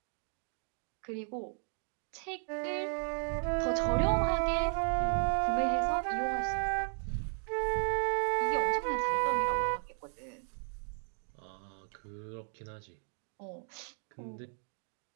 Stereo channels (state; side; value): silent; left; 55 dB below the other